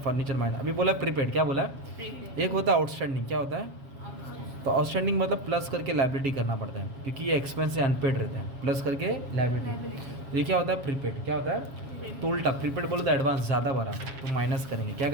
minus. अभी बोला प्रीपेड, क्या बोला, एक होता है आउटस्टैंडिंग। क्या होता है, तो आउटस्टैंडिंग मतलब प्लस करके लायबिलिटी करना पड़ता है, क्योंकि ये एक्सपेंस से अनपेड रहते हैं, प्लस करके लायबिलिटी। ये क्या होता है, प्रीपेड। क्या होता है, तो उल्टा, प्रीपेड बोलो तो एडवांस ज़्यादा भरा तो माइनस करेंगे, क्या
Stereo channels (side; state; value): left; late; 7.2 ms